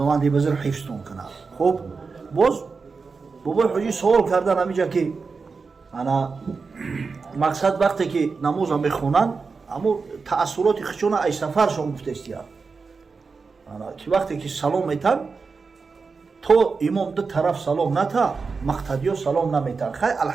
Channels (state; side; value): quieter; left; 4.7 dB